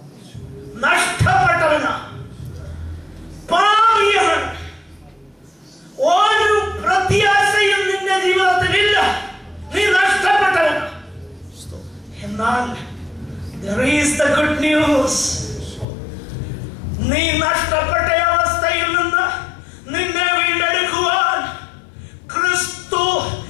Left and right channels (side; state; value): right; drops out; at 15.9 s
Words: നഷ്ടപ്പെട്ടവനാ, പാപിയാണ്. ഒരു പ്രത്യാശയും നിന്റെ ജീവിതത്തിലില്ല, നീ നഷ്ടപ്പെട്ടവനാ. എന്നാൽ there is the good news. നീ നഷ്ടപ്പെട്ട അവസ്ഥയിൽ നിന്ന് നിന്നെ വീണ്ടെടുക്കുവാൻ ക്രിസ്തു